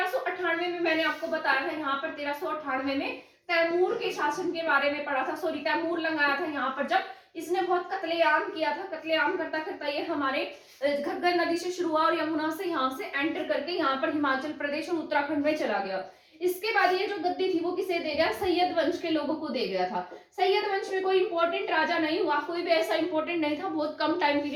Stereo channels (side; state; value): both; identical; correlation 1.00